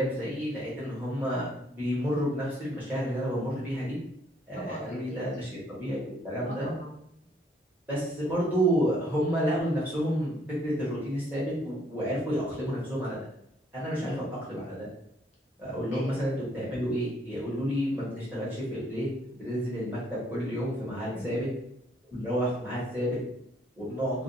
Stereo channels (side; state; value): both; normal; correlation 0.66